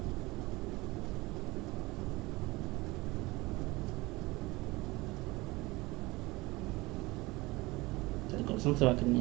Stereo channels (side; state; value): left; quieter; 21.8 dB